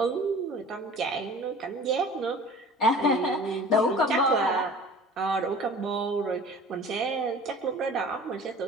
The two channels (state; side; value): normal; both; correlation 0.43